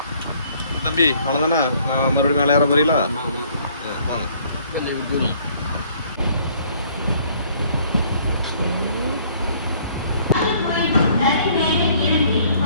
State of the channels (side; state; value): both; inverted; correlation -0.61